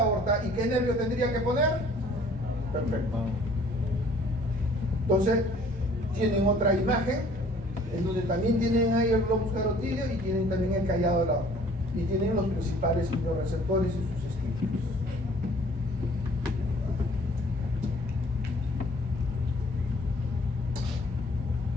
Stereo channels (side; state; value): both; normal; correlation 0.55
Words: aorta. ¿Y qué nervio tendría que poner? Perfecto. Entonces, tienen otra imagen en donde también tienen ahí el globus carotídeo y tienen también el callado de la aorta. Y tienen los principales quimioreceptores y sus estímulos.